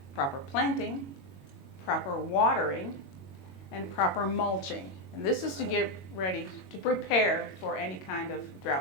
proper planting, proper watering, and proper mulching. And this is to get ready to prepare for any kind of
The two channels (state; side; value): late; right; 22 ms